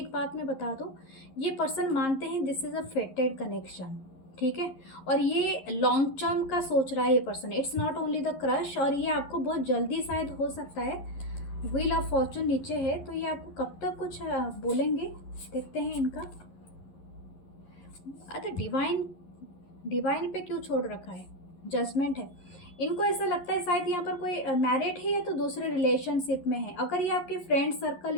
बात मैं बता दूँ, ये पर्सन मानते हैं दिस इज़ अ फेटेड कनेक्शन, ठीक है। और ये लॉन्ग टर्म का सोच रहा है ये person, it's not only the crush. और ये आपको बहुत जल्दी शायद हो सकता है, व्हील ऑफ फॉर्चून नीचे है, तो ये आपको कब तक कुछ बोलेंगे, देखते हैं इनका। अच्छा, डिवाइन पे क्यों छोड़ रखा है, जजमेंट है। इनको ऐसा लगता है शायद यहाँ पर कोई मैरिड है या तो दूसरे रिलेशनशिप में है। अगर ये आपके फ्रेंड सर्कल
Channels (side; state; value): right; late; 11 ms